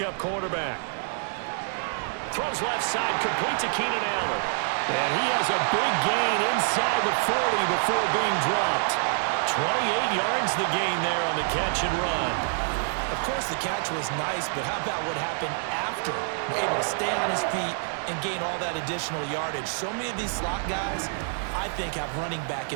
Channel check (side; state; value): left; silent; 60 dB below the other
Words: quarterback. Throws left side, complete to Keenan Allen. And he has a big gain inside the 40 before being dropped. 28 yards the gain there on the catch and run. Of course, the catch was nice, but how about what happened after? Able to stay on his feet and gain all that additional yardage. So many of these slot guys, I think, have running back